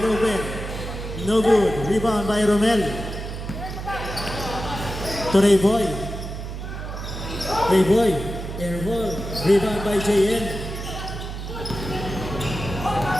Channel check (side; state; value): right; noise; hum, 7 dB below the sound